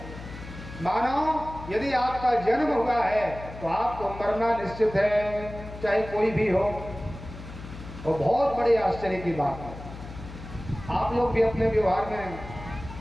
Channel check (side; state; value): left; noise; hum, 13 dB below the sound